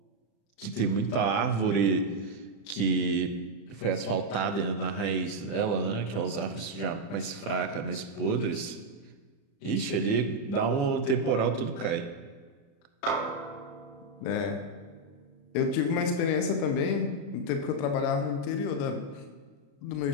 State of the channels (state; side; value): late; right; 35 ms